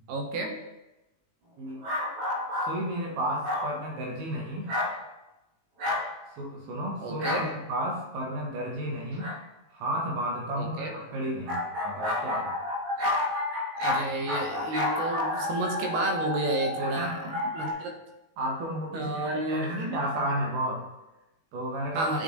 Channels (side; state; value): left; late; 19 ms